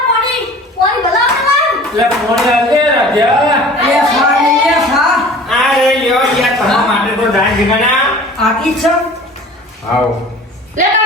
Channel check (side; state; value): both; normal; correlation 0.44